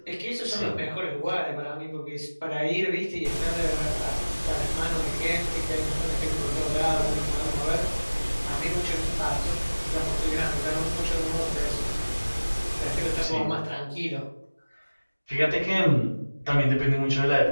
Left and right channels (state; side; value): inverted; both; correlation -1.00